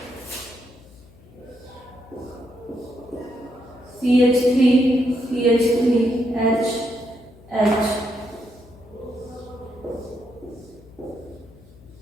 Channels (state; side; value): noise; left; hum, 24 dB below the sound